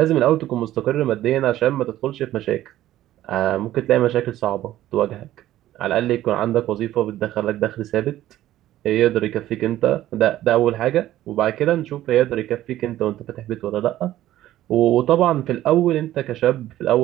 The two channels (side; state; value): left; quieter; 13.9 dB